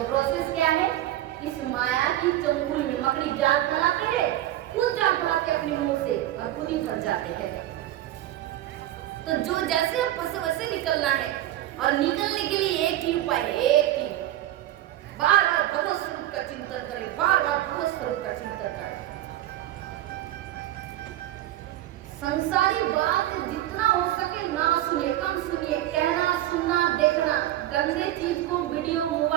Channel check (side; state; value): left; quieter; 14.0 dB